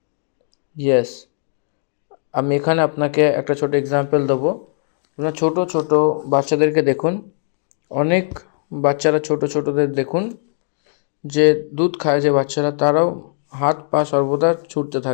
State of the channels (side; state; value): right; silent; digital silence